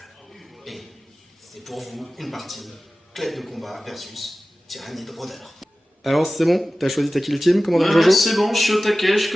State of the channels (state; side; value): normal; both; correlation 0.96